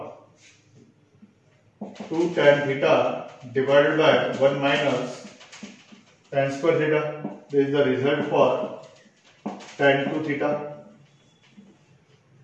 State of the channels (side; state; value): both; identical; correlation 1.00